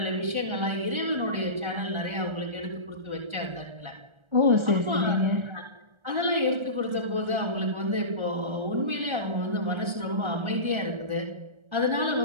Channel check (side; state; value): left; late; 1.3 ms